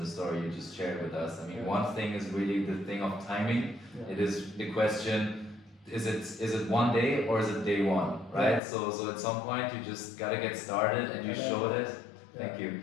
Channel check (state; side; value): drops out; right; at 8.6 s